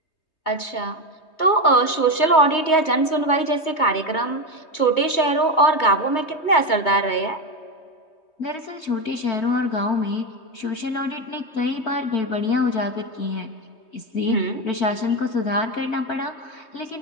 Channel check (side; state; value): right; late; 3.2 ms